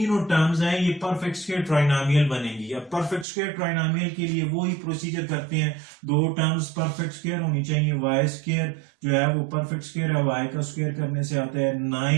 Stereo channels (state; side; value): drops out; left; at 3.2 s